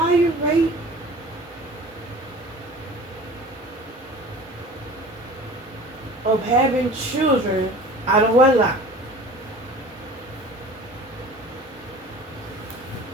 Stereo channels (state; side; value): normal; both; correlation 0.42